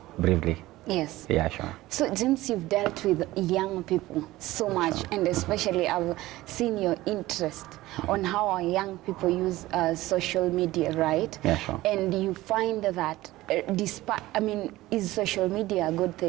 briefly. Yes. Yeah, sure. So, James, you've dealt with young people so much, and especially I've seen your interest on how our young people use social media, right? Yeah, sure. And you find that, despite, I mean, is social media a good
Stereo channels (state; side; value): quieter; left; 17.4 dB